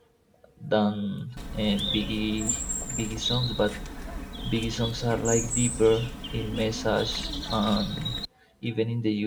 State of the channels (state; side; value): identical; both; correlation 1.00